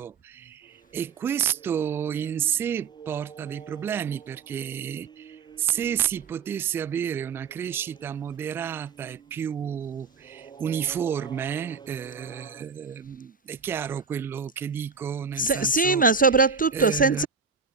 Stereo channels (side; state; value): left; quieter; 5.4 dB